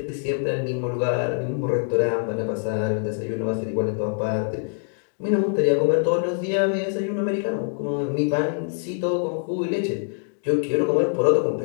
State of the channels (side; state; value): right; silent; 62 dB below the other